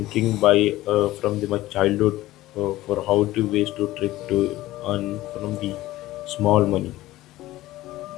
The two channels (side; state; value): right; quieter; 16.5 dB